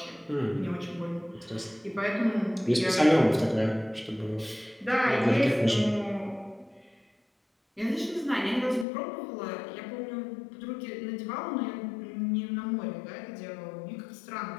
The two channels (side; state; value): right; drops out; at 8.8 s